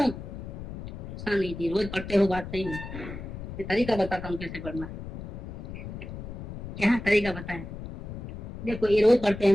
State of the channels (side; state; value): left; noise; rumble, 10 dB below the sound